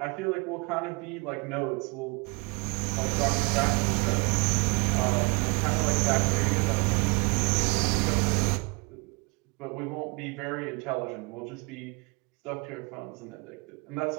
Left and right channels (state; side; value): quieter; left; 29.9 dB